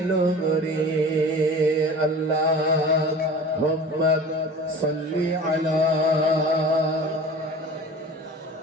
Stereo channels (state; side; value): normal; both; correlation 0.38